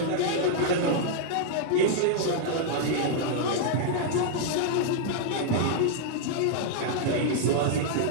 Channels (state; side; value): different; both; correlation -0.01